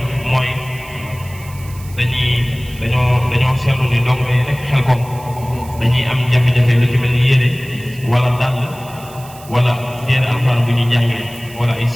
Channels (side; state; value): right; noise; hiss, 20 dB below the sound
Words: mooy dañoo seetlu ni dong yi nekk Xelkom dañuy am jafe-jafe lu ci mel ni yére wala dàll wala téere alxuraan bu ñuy jàngee wala ay